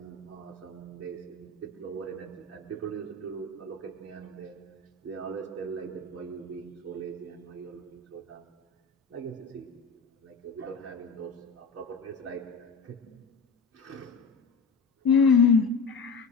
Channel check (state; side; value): quieter; right; 4.5 dB